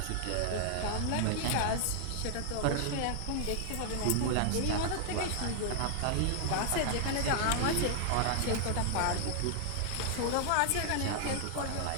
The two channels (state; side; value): different; both; correlation 0.00